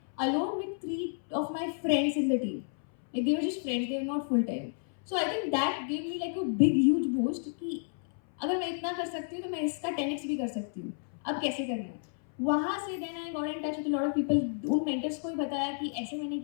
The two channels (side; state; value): right; silent; 57 dB below the other